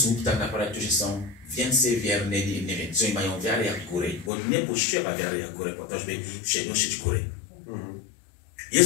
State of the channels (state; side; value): drops out; right; at 4.3 s